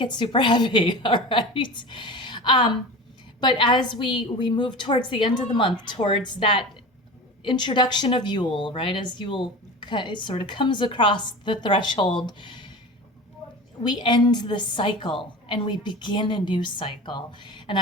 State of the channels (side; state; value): both; normal; correlation 0.33